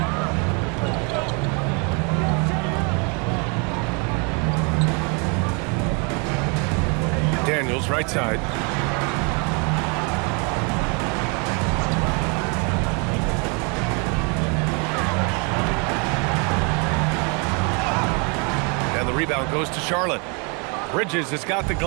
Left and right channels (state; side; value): quieter; left; 33.9 dB